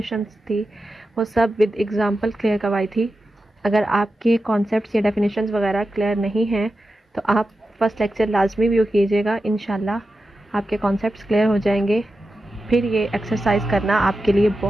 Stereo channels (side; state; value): both; normal; correlation 0.91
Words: थी, वो सब विद एग्जांपल क्लियर करवाई थी। अगर आपके कॉन्सेप्ट्स या डेफिनेशंस वगैरह क्लियर नहीं हैं तो आप फर्स्ट लेक्चर लाजमी व्यू कीजिएगा। इंशाल्लाह आपके कॉन्सेप्ट्स क्लियर हो जाएंगे, फिर ये एक्सरसाइज करना आपके लिए